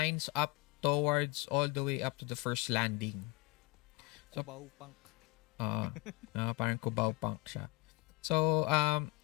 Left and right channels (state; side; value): quieter; right; 22.3 dB